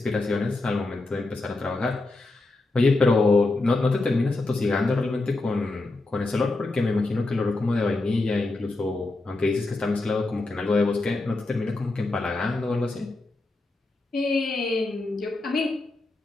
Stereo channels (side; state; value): right; quieter; 3.1 dB